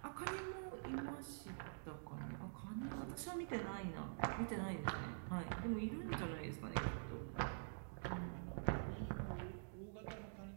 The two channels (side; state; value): left; silent; digital silence